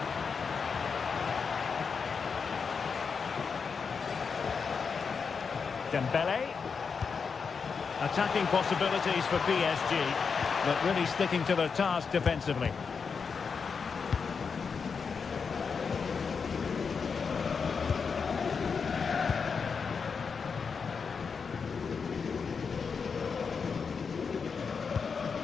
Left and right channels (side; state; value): right; quieter; 5.6 dB